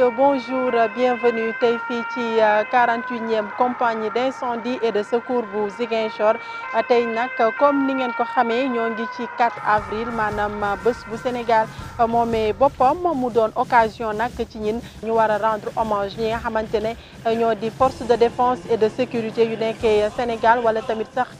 bonjour, bienvenue tey fii ci 48e compagnie d'incendie et de secours bu Ziguinchor tey nag comme ni ngeen ko xamee ñoo ngi ci 4 avril maanaam bés bu Sénégal moomee boppam mu doon occasion nag ci ñin ñu war a rendre hommage ñi nga xamante ne ñoo di force de défense et de sécurité yu nekkee Sénégal wala tamit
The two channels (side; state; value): both; identical; correlation 1.00